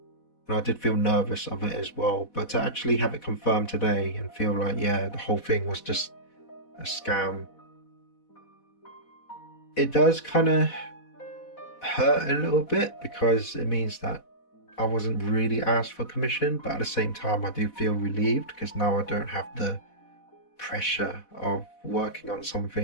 And I did feel nervous of it as well, but to actually have it confirmed today and feel like, yeah, the whole thing was just a scam, it does kind of hurt a little bit, because it means that I wasn't really asked for commission, but at the same time I do feel relieved, because now I don't have the pressure of working on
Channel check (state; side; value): late; right; 4.1 ms